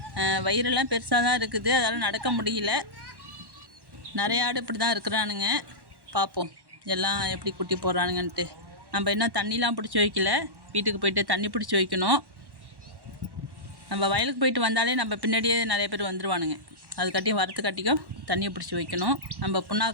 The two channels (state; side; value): late; left; 1.1 ms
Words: வயிறெல்லாம் பெருசாக தான் இருக்குது, அதால் நடக்க முடியல. நிறைய ஆடு இப்படி தான் இருக்கிறானுங்க. பார்ப்போம் எல்லாம் எப்படி குட்டி போடுறானுங்கன்ட்டு. நம்ம இன்னும் தண்ணிலாம் பிடிச்சி வைக்கல. வீட்டுக்கு போயிட்டு தண்ணி பிடிச்சி வைக்கணும். நம்ம வயலுக்கு போயிட்டு வந்தாலே நம்ம பின்னாடியே நிறைய பேர் வந்துடுவானுங்க. அதுக்காட்டியும் வரத்துக்காட்டியும் தண்ணியை பிடிச்சி வைக்கணும். நம்ம